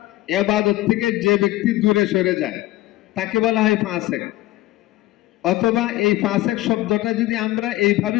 ইবাদত থেকে যে ব্যক্তি দূরে সরে যায় তাকে বলা হয় ফাসেক। অথবা এই ফাসেক শব্দটা যদি আমরা এইভাবে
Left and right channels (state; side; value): quieter; right; 17.0 dB